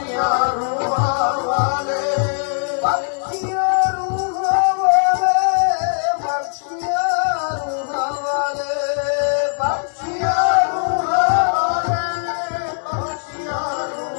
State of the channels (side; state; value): right; silent; digital silence